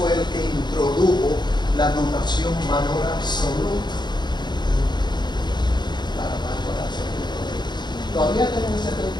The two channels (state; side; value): late; right; 0.21 ms